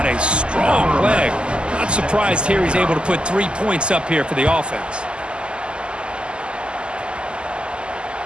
a strong leg. Not surprised here he's able to put 3 points up here for the offense.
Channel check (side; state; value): left; late; 0.050 ms